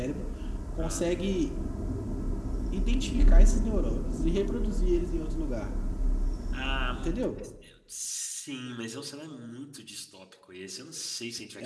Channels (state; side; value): identical; both; correlation 1.00